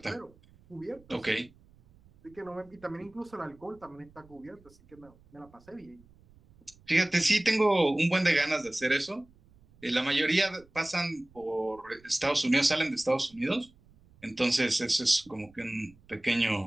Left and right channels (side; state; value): right; noise; rumble, 28 dB below the sound